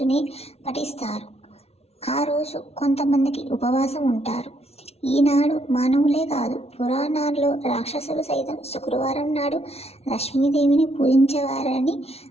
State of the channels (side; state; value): right; late; 0.30 ms